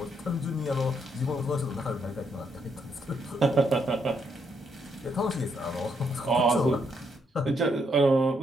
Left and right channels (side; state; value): both; normal; correlation 0.75